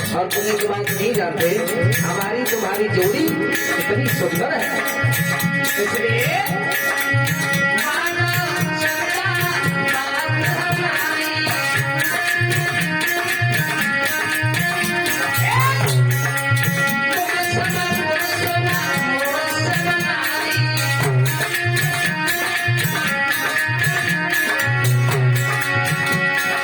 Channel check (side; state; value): both; identical; correlation 1.00